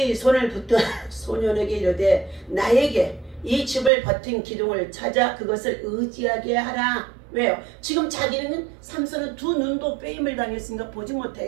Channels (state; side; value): drops out; left; at 3.9 s